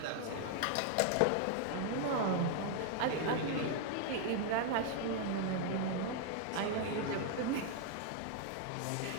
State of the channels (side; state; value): both; different; correlation 0.00